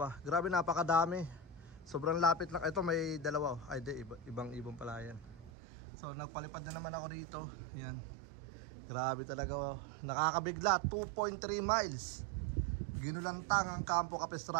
Grabe, napakadami. Sobrang lapit lang. Ito may dalawa. Ay di, ibang ibon pala yan. So nagpalipad na naman ako rito. Yan. Grabe talaga. Nakakabigla. 2.3 miles. Ginulantang ang Campo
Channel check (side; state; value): left; drops out; at 5.5 s